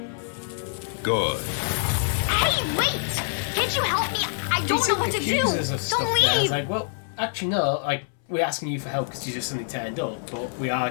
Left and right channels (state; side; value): silent; right; 61 dB below the other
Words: Good. Hey, wait! Can't you help me? I don't know what to do. Accuse us of stuff Don't there. It's leave. like, well, actually no. Like, we're asking you for help because you just suddenly turned up, but we are